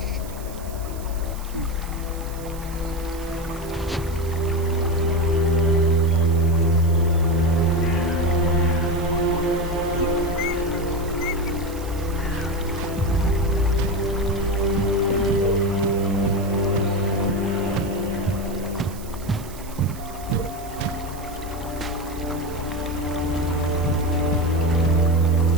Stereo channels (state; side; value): noise; right; hiss, 18 dB below the sound